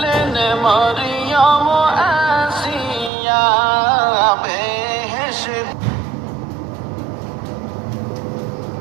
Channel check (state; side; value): drops out; left; at 3.1 s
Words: মরিয়ম আসিয়া বেহেশত